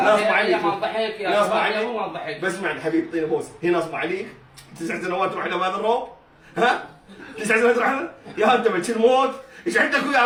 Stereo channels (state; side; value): identical; both; correlation 1.00